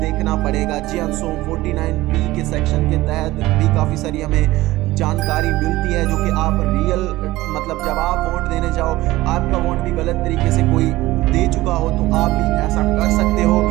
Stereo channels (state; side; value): quieter; left; 17.9 dB